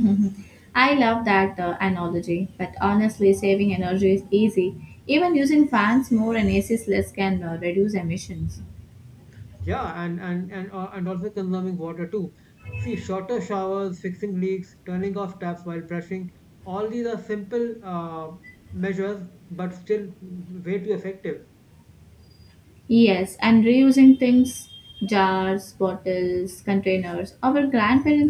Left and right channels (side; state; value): both; identical; correlation 1.00